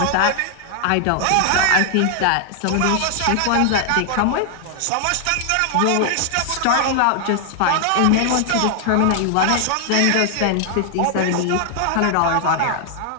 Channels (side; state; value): both; different; correlation 0.00